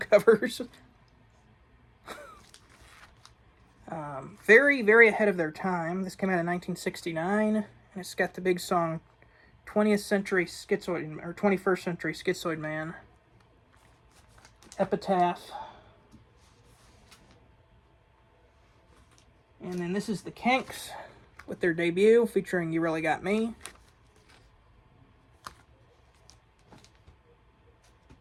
Very, very ahead of their time. This came out in 1969, and it's got the big song 20th Century Schizoid, or 21st Century Schizoid Man. Epitaph. And then this is the Kinks with their debut featuring You Really Got Me.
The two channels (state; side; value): identical; both; correlation 1.00